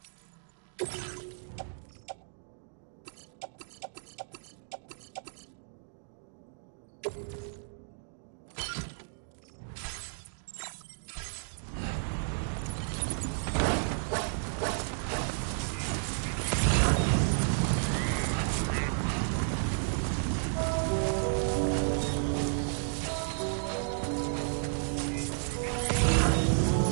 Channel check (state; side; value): silent; left; digital silence